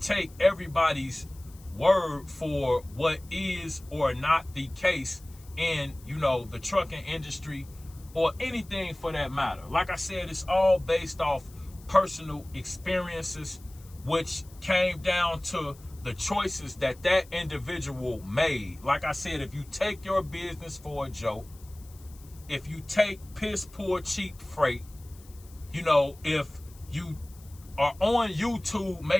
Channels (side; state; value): left; noise; hiss, 24 dB below the sound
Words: take everybody's word for what is or not the case in, the trucking industry or anything for that matter. Like I said, it's all based off personal experiences, which came down to the choices that individual made. Like I said, if you take your business for a joke, if you take piss poor cheap freight, if you are on YouTube